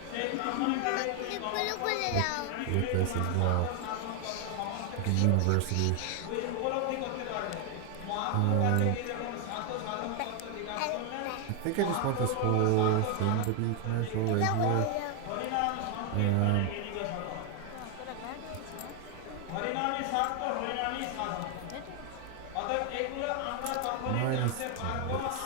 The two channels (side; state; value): both; different; correlation 0.00